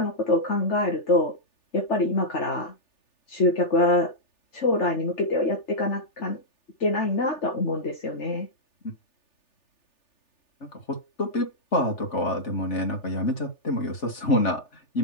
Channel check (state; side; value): late; right; 3.4 ms